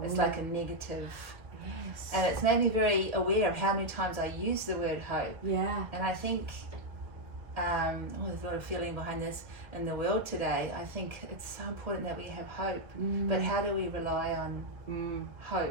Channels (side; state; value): left; late; 1.5 ms